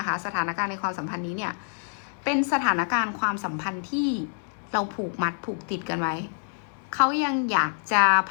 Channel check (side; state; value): right; silent; 60 dB below the other